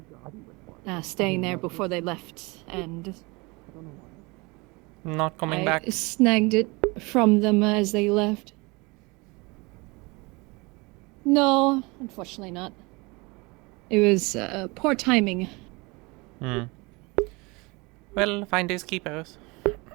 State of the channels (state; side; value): quieter; left; 26.3 dB